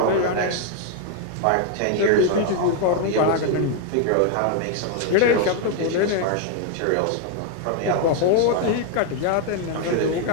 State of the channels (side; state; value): both; different; correlation 0.00